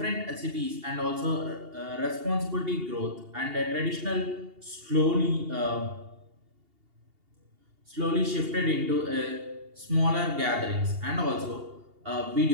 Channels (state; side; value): late; left; 2.8 ms